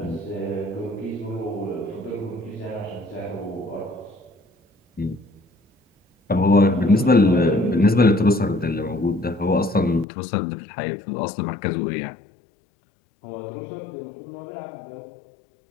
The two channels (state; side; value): drops out; right; at 10.1 s